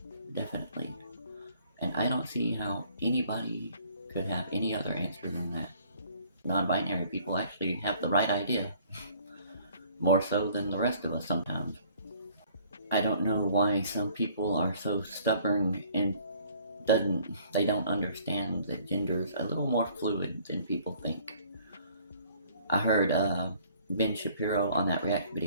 Definitely. And I don't see how anybody could have any other answer than that. Non-binary people actually have the right idea. More so than the rest of us sometimes. I don't know why some people are so stubborn and they don't understand that gender's a little more fluid than people think. I heard Ben Shapiro on that react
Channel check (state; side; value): inverted; both; correlation -0.58